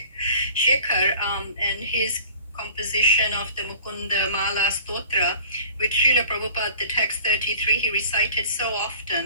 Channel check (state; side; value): inverted; both; correlation -0.46